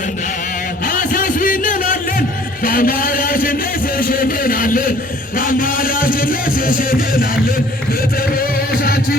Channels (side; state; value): both; normal; correlation 0.55